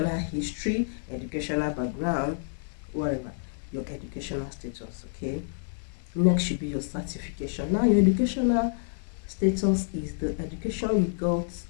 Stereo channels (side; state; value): right; silent; 59 dB below the other